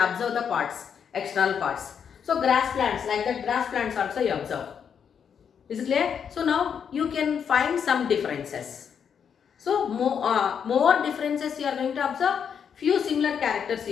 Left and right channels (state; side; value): quieter; right; 7.4 dB